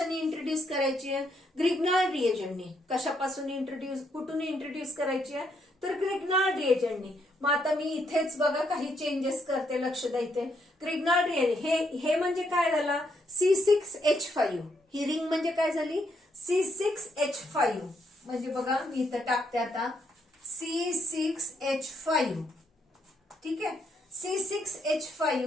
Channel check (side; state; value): both; normal; correlation 0.75